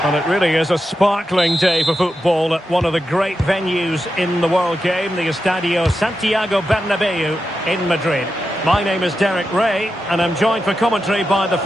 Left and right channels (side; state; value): both; normal; correlation 0.89